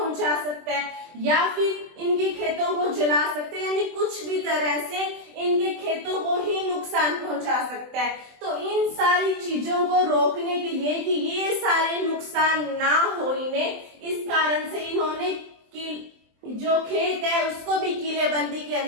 सकता है या फिर इनके खेतों को जला सकते हैं, यानी कुछ भी तरह से इनके खेतों को ही नुकसान पहुंचा सकता है। तो इन सारी चीजों को रोकने के लिए कि ये सारे नुकसान ना हो इन्हें, इस कारण से इन्होंने जो खेत है उसको भी किलेबंदी के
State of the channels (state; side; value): late; left; 24 ms